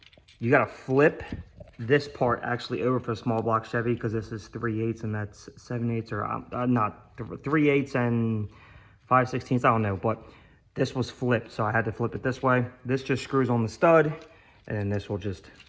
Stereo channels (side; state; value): both; identical; correlation 1.00